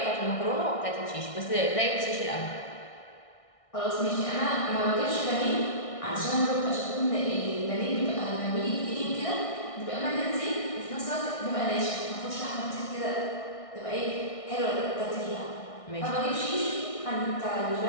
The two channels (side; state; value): right; late; 1.6 ms